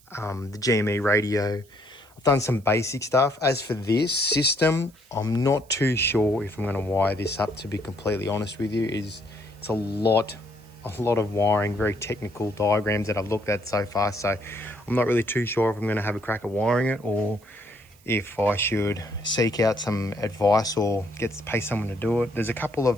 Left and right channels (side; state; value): right; noise; hiss, 29 dB below the sound